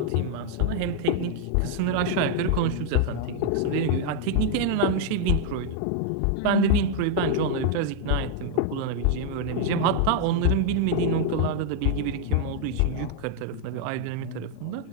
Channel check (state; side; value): different; both; correlation 0.00